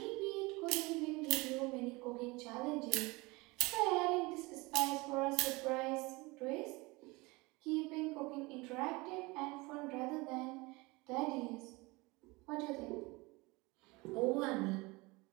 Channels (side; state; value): left; quieter; 24.1 dB